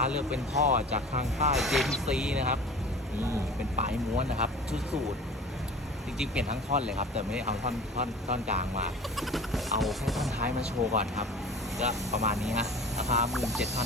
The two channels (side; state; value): both; normal; correlation 0.40